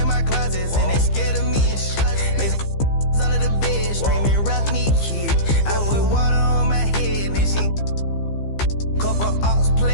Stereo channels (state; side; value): late; right; 15 ms